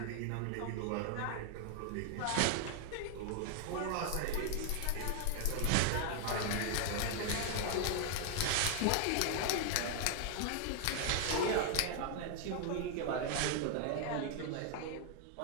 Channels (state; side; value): different; both; correlation 0.00